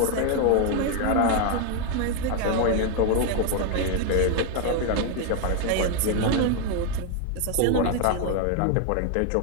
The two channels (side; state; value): both; different; correlation 0.01